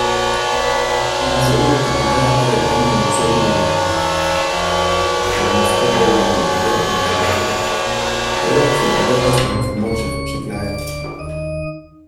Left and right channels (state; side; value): identical; both; correlation 1.00